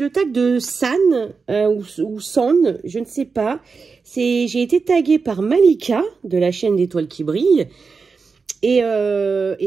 tag de San ou San, je ne sais pas. J'ai été taguée par Malika de la chaîne d'Étoiles qui brillent. Et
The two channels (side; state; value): left; quieter; 4.9 dB